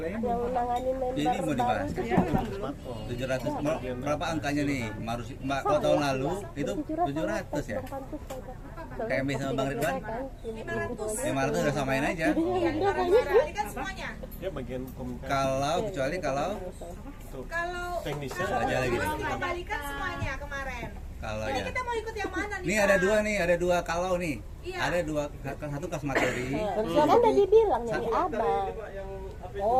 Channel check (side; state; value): both; identical; correlation 1.00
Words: yang nanganin member Ini mau dibahas. baru. 700 berapa angkanya nih? Kalau tahun lalu itu 700 ya. Kayak Emi sama Bang Ridwan. 500 udah samain aja. Iya, balikan semuanya. Dia bagian komunikasi. Kecuali kalau Kalau Teknisnya aja lagi nih. kalau nggak balikan semuanya kemarin. Kalau Jadi ya. kita mau ikut yang mana nih? Nih Kak? ada dua kalau nih. Iya. Ada dua, satu kas materi. Kan udah dibilang nyari abang.